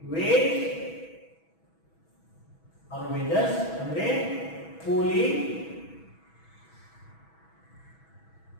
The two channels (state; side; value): late; right; 6.1 ms